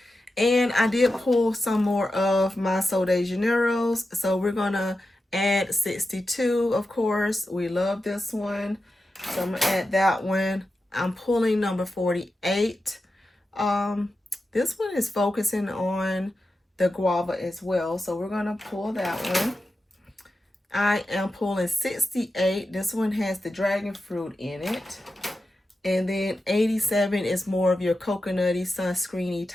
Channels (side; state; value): both; normal; correlation 0.91